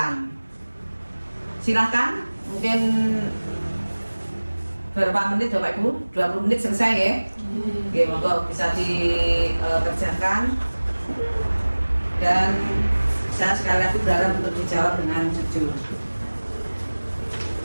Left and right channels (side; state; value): both; inverted; correlation -1.00